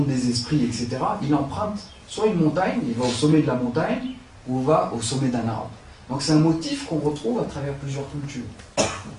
des esprits, etc., il emprunte soit une montagne, il va au sommet de la montagne, ou va au sommet d'un arbre. Donc c'est un motif qu'on retrouve à travers plusieurs cultures.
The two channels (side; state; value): both; identical; correlation 1.00